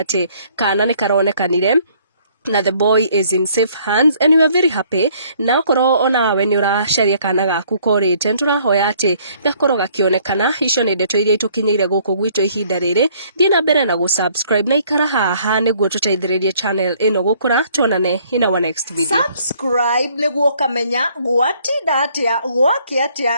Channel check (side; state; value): both; inverted; correlation -0.62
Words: kana ni karonekanire na the boy is in safe hands and we are very happy na okoro ona we ni uracaria kana gaku korite turahoya ati gakorwo gakionekana icio ni ndeto iria itukinyire guku gwitu ihinda riri thie na mbere na subscribe na ikara haha niguo tuteithiririe channel ino gukura tuonane in our next video subscribe niguo kamenya gwatinda atia gwake